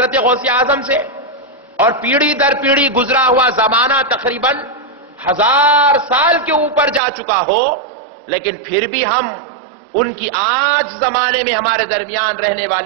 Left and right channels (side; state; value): left; drops out; at 7.0 s